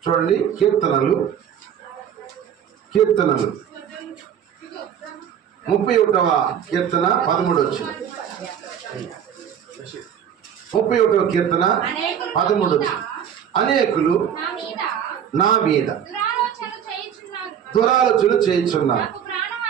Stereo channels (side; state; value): left; quieter; 8.9 dB